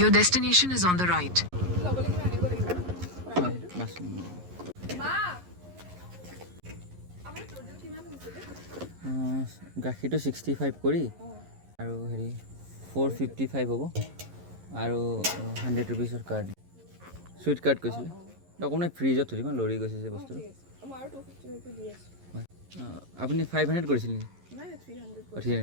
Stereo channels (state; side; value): late; left; 11 ms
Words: destination is on the right. হয় bus গাখীৰটো 65 কৰি আৰু হেৰি 455 হ'ব আৰু 100 ৰুপিছৰ কাৰ্ড চুইট কাৰ্ড কৈছিলে অকণমান ফ্ৰিজত থৈ দিম লৰি গৈছে যে বস্তুটো হয় আপুনি 500 কৰিছিল নেকি